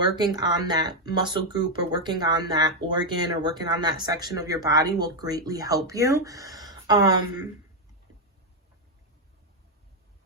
on that muscle group or working on that organ or working on that section of your body will greatly help you.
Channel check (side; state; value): both; normal; correlation 0.03